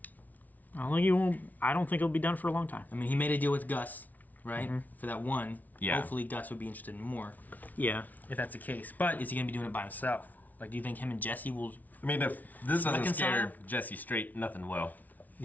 I don't think he'll be done for a long time. I mean, he made a deal with Gus, right? For that one. Yeah. Hopefully Gus would be interested in more, Yeah. if that's the case. But is he going to be doing it by himself? Like, do you think him and Jesse will... I mean, if this doesn't Reconcile? scare Jesse straight, nothing will.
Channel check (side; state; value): right; late; 0.077 ms